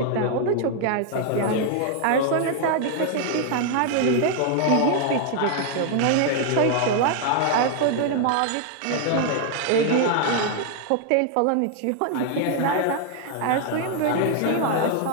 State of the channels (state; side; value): different; both; correlation 0.00